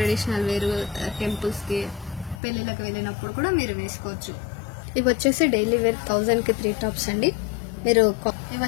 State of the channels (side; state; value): right; drops out; at 2.4 s